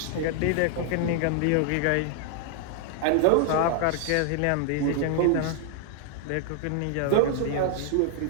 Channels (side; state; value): both; different; correlation 0.00